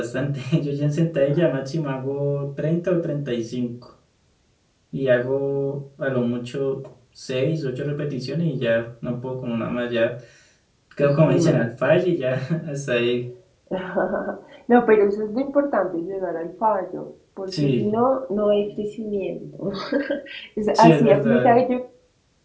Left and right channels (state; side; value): identical; both; correlation 1.00